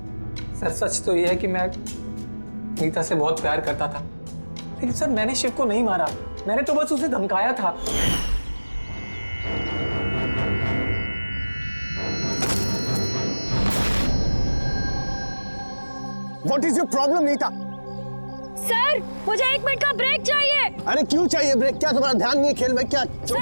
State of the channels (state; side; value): inverted; both; correlation -1.00